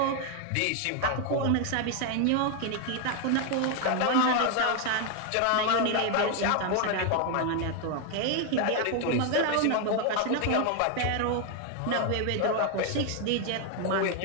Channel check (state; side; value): different; both; correlation 0.01